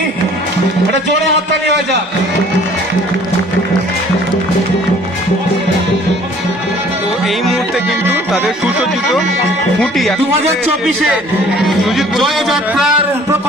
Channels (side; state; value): both; normal; correlation 0.54